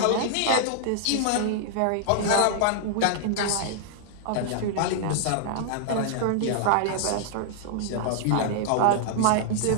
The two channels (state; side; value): different; both; correlation -0.01